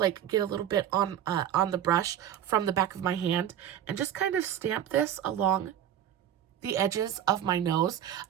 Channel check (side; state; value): left; quieter; 10.5 dB